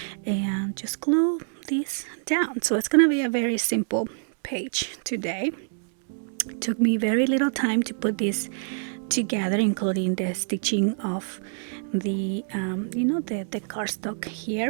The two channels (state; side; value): silent; left; digital silence